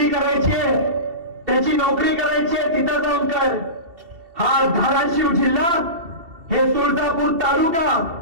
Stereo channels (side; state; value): left; late; 2.7 ms